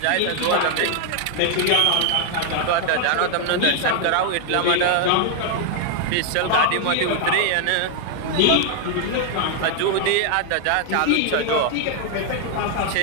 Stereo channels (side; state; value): both; different; correlation 0.00